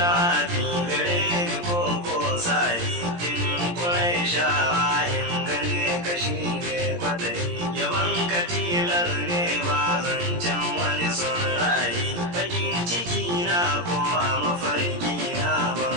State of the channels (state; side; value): late; left; 17 ms